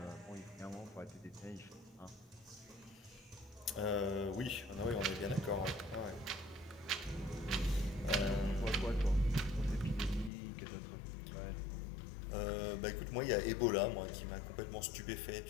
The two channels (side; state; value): right; drops out; at 10.3 s